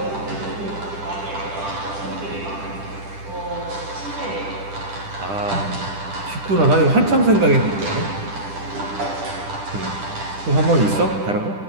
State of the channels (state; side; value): late; left; 10 ms